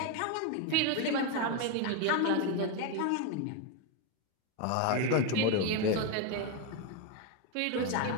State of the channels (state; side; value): different; both; correlation 0.02